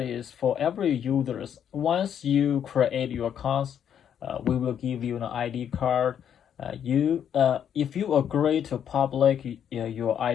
for every user. Once you create your accounts, we will give you an ID card. If you agree to public your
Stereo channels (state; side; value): quieter; right; 8.9 dB